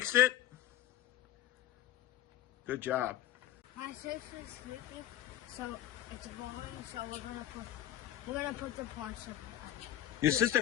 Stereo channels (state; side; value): quieter; right; 12.7 dB